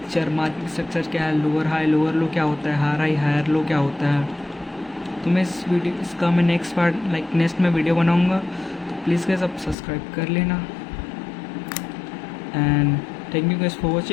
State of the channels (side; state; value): right; drops out; at 9.8 s